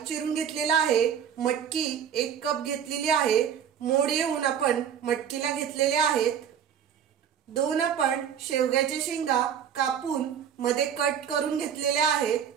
चिरून घेतलेला आहे, मटकी 1 कप घेतलेली आहे, मोड येऊन आपण मटकीला घेतलेले आहेत. 2 आपण शेवग्याच्या शेंगा कापून मध्ये कट करून घेतलेल्या आहेत.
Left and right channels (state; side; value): quieter; left; 8.5 dB